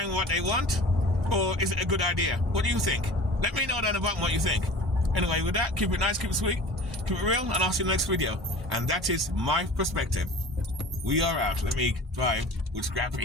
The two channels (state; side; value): normal; both; correlation 0.40